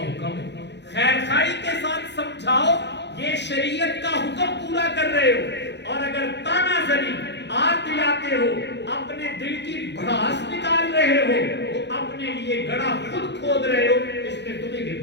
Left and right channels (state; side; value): late; right; 0.50 ms